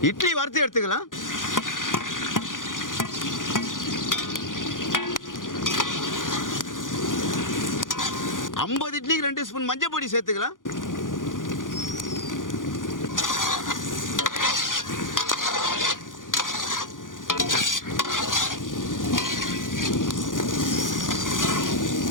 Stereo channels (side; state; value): right; late; 0.89 ms